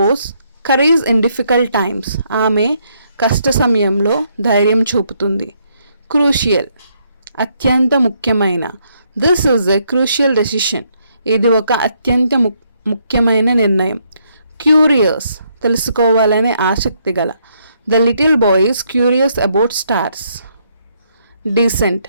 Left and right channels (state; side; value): inverted; both; correlation -0.73